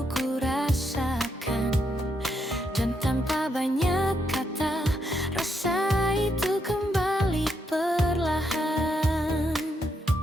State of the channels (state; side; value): normal; both; correlation 0.79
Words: ku rasakan. Dan tanpa banyak kata, rasa itu kembali perlahan.